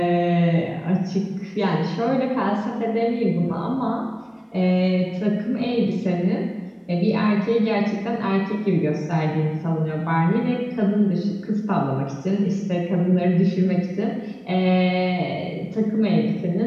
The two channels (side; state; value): both; identical; correlation 1.00